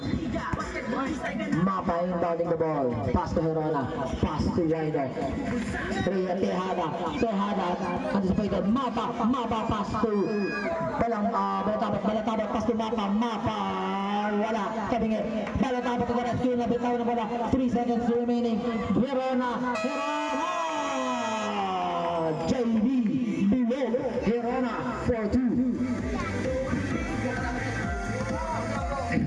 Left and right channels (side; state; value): both; identical; correlation 1.00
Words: Mapa inbounding the ball. Pass to Herona. Pass to Ryder. Tehada. Anticipated. Mapa pass to Balatabat. Pass to Mapa. Wala. Kabingi. Balatabat to the rescue. Nabitaw na bola. 3 seconds remaining. Herona. JB. Below. Herona. 4-2.